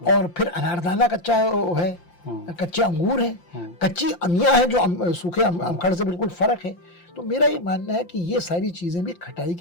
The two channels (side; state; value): right; late; 5.8 ms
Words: और फिर अनारदाना कच्चा है, कच्चे अंगूर हैं, कच्ची अमिया है जो सूखे अमखड़ से बिल्कुल फर्क है। तो मेरा ये मानना है कि ये सारी चीजें भी, खटाई